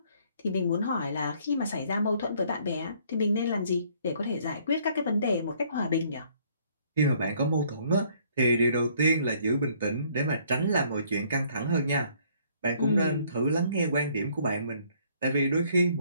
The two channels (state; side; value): inverted; both; correlation -0.63